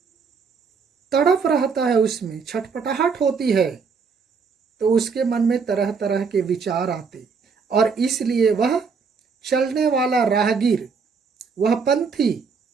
तड़प रहता है, उसमें छटपटाहट होती है, तो उसके मन में तरह तरह के विचार आते, और इसलिए वह चलने वाला राहगीर वह पंथी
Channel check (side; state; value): left; quieter; 5.4 dB